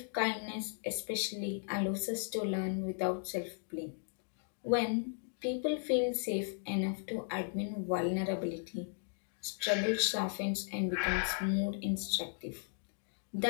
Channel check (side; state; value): right; silent; digital silence